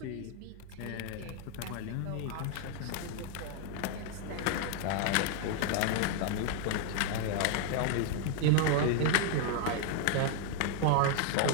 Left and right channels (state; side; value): different; both; correlation 0.00